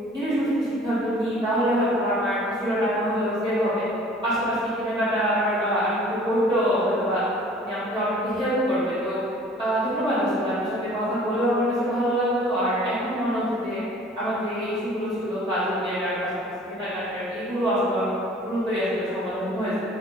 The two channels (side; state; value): both; normal; correlation 0.50